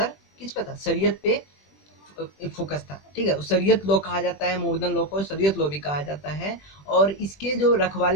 किस पे था, शरीयत पे फोकस था। ठीक है, शरीयत लॉ कहा जाता है, मोहम्मदन लॉ को शरीयत लॉ भी कहा जाता है। और इसके जो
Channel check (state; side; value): late; right; 20 ms